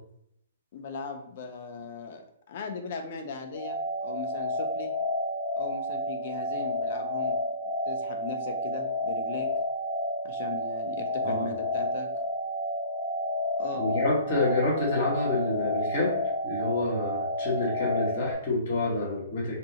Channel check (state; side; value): inverted; both; correlation -0.45